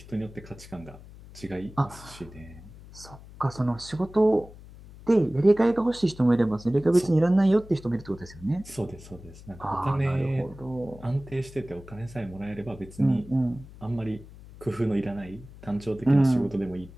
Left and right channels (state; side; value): noise; left; hum, 18 dB below the sound